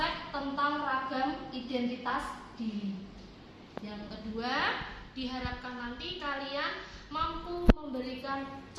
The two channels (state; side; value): identical; both; correlation 1.00